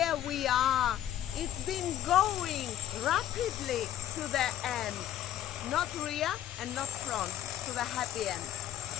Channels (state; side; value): quieter; right; 11.7 dB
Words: we are. It's been going rapidly to the end. Not rear and not front, to the happy end.